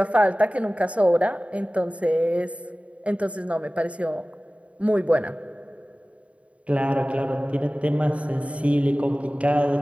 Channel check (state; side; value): late; left; 0.064 ms